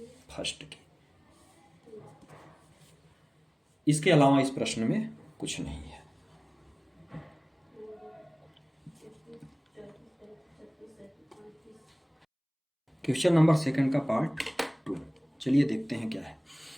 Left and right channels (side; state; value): both; identical; correlation 1.00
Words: फर्स्ट की। इसके अलावा इस प्रश्न में कुछ नहीं है। क्वेश्चन नंबर सेकंड का पार्ट 2, चलिए देखते हैं क्या है।